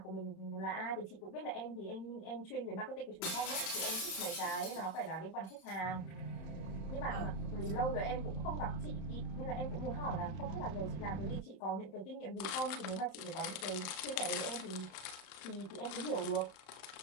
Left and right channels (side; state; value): right; late; 31 ms